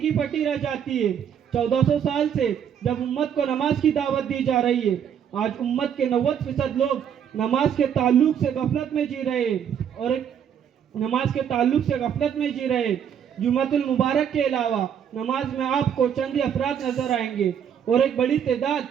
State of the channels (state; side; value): quieter; left; 8.5 dB